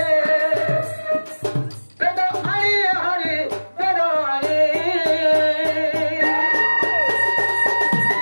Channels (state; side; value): inverted; both; correlation -1.00